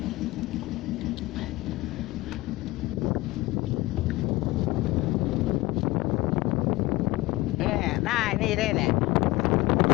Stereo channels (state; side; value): quieter; right; 19.8 dB